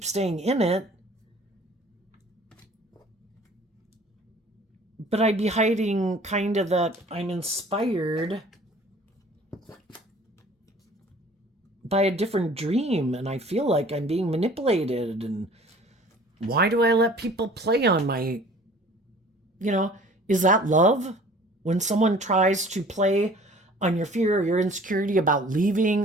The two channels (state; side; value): normal; both; correlation 0.49